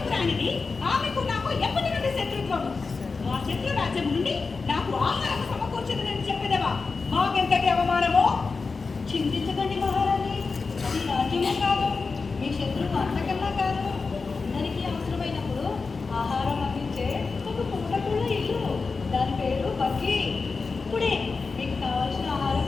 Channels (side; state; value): right; quieter; 4.4 dB